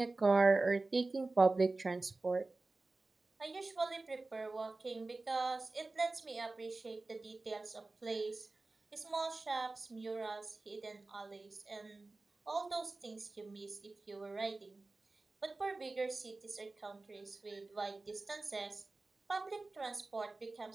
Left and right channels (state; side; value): quieter; left; 3.3 dB